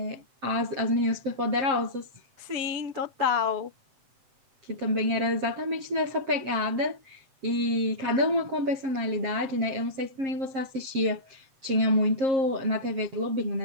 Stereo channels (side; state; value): left; late; 7.5 ms